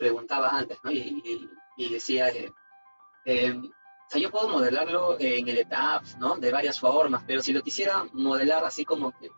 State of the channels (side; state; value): both; inverted; correlation -1.00